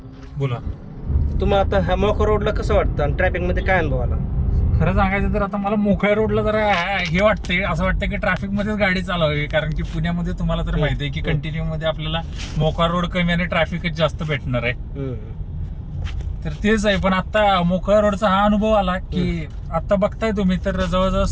बोला. तुम्हाला आता ह्या मोखा रोडला कसं वाटतं आणि ट्रॅफिक मध्ये काय अनुभव आला? खरं सांगायचं तर आता मला मोकळ्या रोडला जरा हे वाटतंय, असं वाटतं की ट्रॅफिक मध्येच गाडी चालवावी. कारण की पुण्यामध्ये तुम्हाला तर माहिती आहे की कंटिन्यू मध्ये आपल्याला मोकळा रोड कमी आणि ट्रॅफिकच जास्त भेटणार आहे. तर तेच आहे. पण आता मोकळ्या रोडचा हा अनुभव आला की आता बघताय तुम्ही तर जवळजवळ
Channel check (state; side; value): identical; both; correlation 1.00